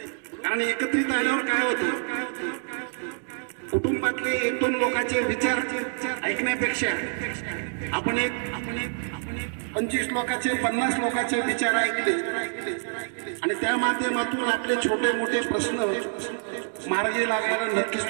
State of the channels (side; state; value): left; silent; 60 dB below the other